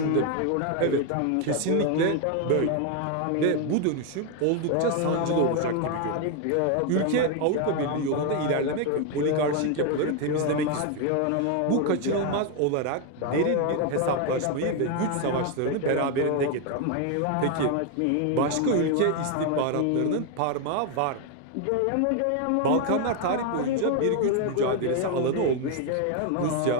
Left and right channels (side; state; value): both; different; correlation 0.01